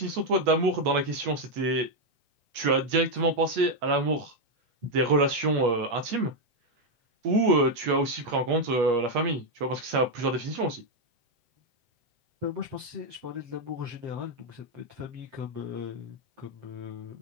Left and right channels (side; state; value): left; late; 8.4 ms